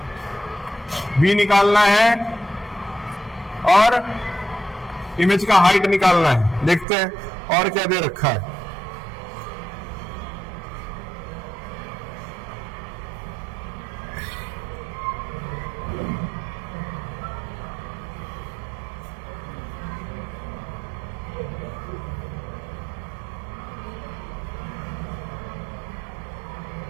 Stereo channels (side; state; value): left; drops out; at 6.9 s